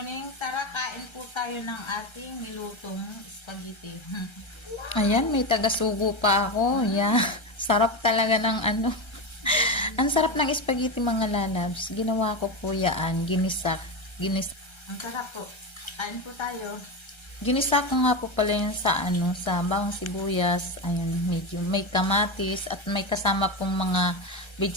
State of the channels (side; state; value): right; late; 1.3 ms